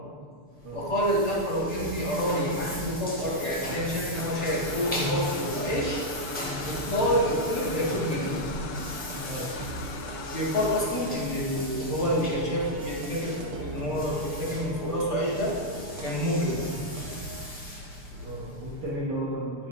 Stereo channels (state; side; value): late; left; 6.7 ms